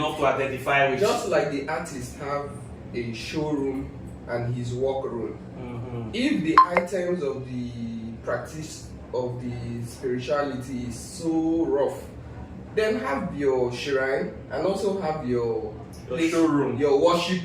to identify with. Just like the artists have a showroom and his workroom. Mhm. If the items of the practice of the spirituality is so rough, then have your shrine and also have your showroom, your worship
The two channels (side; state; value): both; identical; correlation 1.00